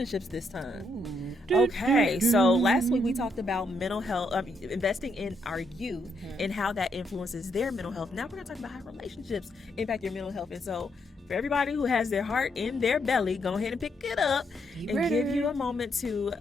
this time. Okay, so last week we talked about mental health, investing in our youth and how that influences their mental health. Now we're going to talk about how relationships impact your mental health. And so for everybody who has their heart in their belly, go ahead and pick it up and give you a moment to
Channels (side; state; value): both; normal; correlation 0.76